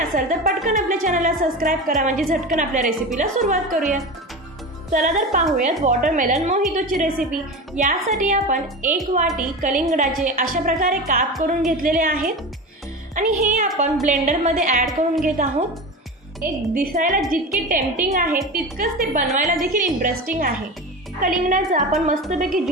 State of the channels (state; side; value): normal; both; correlation 0.26